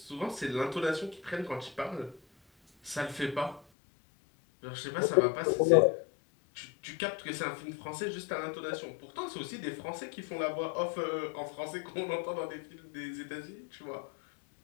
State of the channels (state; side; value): drops out; right; at 3.6 s